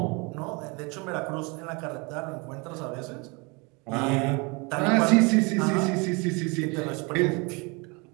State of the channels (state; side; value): quieter; left; 29.2 dB